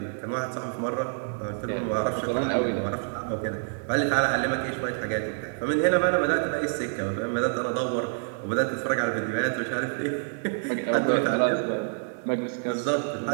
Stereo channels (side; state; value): left; silent; digital silence